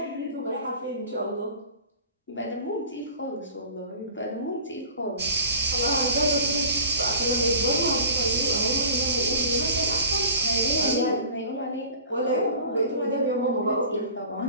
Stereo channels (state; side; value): inverted; both; correlation -0.42